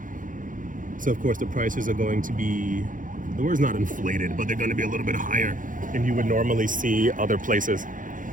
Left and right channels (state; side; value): late; left; 0.38 ms